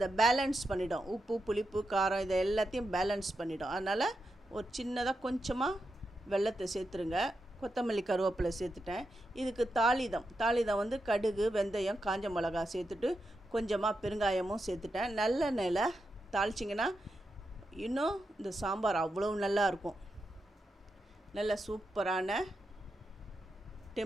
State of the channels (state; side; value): normal; both; correlation 0.87